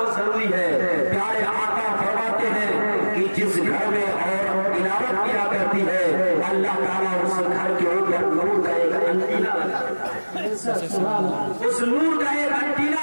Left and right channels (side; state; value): both; inverted; correlation -1.00